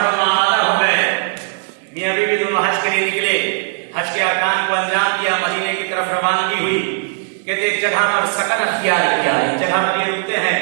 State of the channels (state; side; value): silent; left; 57 dB below the other